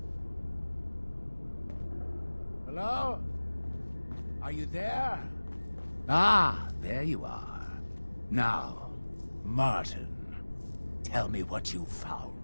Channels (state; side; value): inverted; both; correlation -1.00